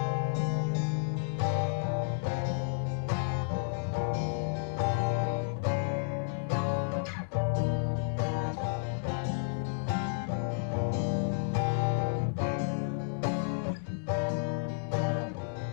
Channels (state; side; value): silent; right; digital silence